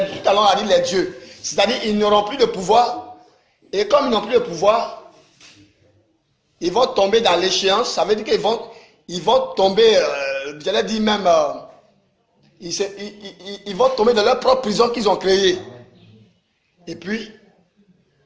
à l'heure on a dit les dieux, c'est-à-dire ils n'auront plus de pouvoir. Et comme ils n'ont plus de pouvoir, ils vont tomber dans l'échéance. Ça veut dire qu'ils vont tomber, j'allais dire même, ils vont tomber dans leur propre prison qu'ils ont créée. Et puis,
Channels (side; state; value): both; identical; correlation 1.00